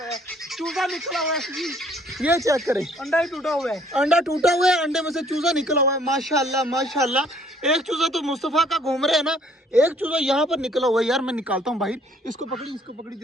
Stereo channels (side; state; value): both; normal; correlation 0.60